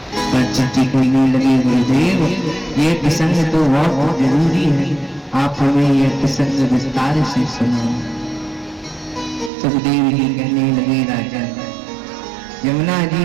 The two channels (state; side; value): drops out; left; at 9.5 s